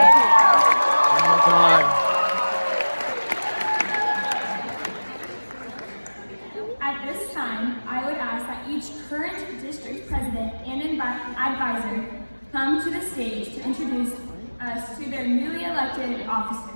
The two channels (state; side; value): inverted; both; correlation -1.00